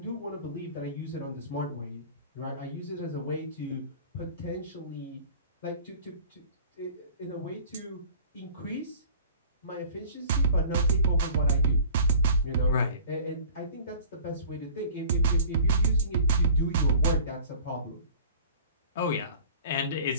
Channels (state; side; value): inverted; both; correlation -0.44